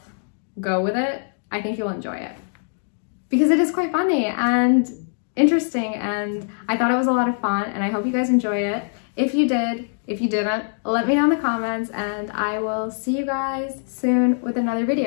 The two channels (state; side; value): silent; right; digital silence